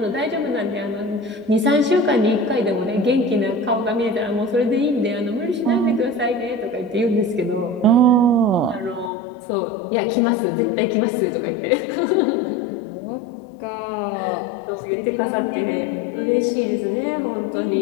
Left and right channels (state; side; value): drops out; right; at 9.1 s